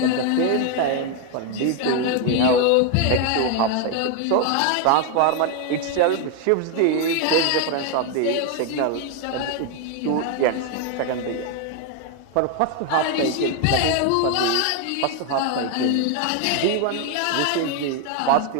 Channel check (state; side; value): different; both; correlation 0.01